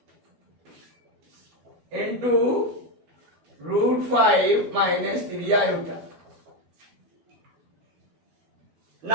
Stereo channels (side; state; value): left; late; 12 ms